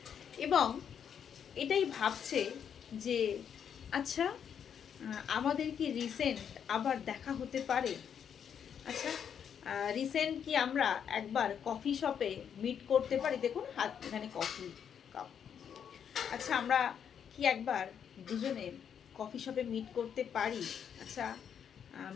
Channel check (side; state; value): right; quieter; 8.1 dB